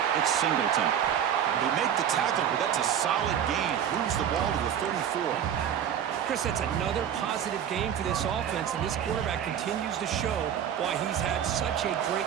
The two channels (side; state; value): left; quieter; 9.1 dB